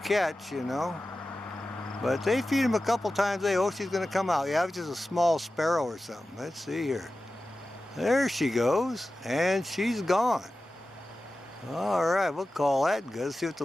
catch, you know. But they feed him a couple times a day. Oh, she's going to come out. Yeah, it's just a small sparrow or something. Let's see here. There she goes. And she's gone. All right, we'll call that good. Let's see what the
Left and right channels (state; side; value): normal; both; correlation 0.94